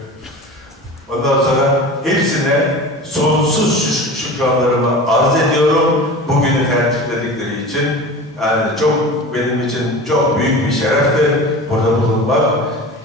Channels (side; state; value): both; normal; correlation 0.35